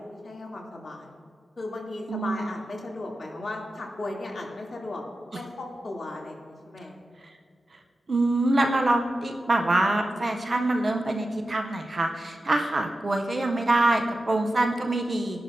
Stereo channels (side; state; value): both; normal; correlation 0.92